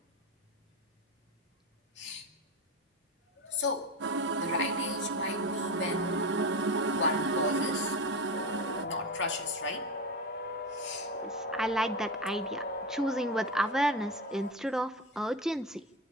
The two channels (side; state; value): both; normal; correlation 0.20